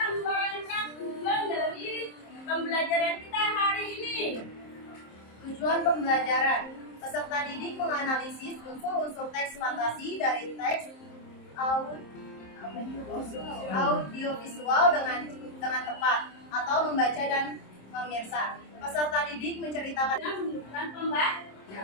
pembelajaran. Peserta didik menganalisis unsur-unsur teks fantasi dari teks audiovisual dengan tepat atau membaca dan memirsa. Peserta didik menceritakan Dengan menunjukkan pembaca.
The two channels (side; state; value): right; late; 27 ms